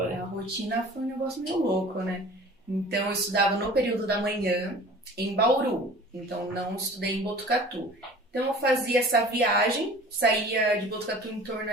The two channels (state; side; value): normal; both; correlation 0.44